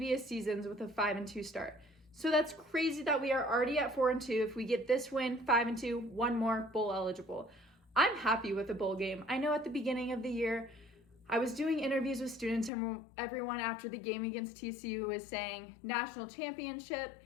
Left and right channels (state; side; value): drops out; right; at 12.7 s